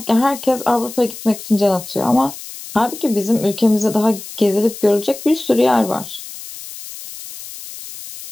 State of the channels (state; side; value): noise; left; hiss, 13 dB below the sound